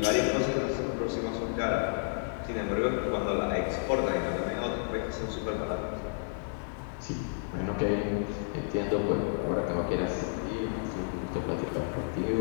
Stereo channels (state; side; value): silent; right; digital silence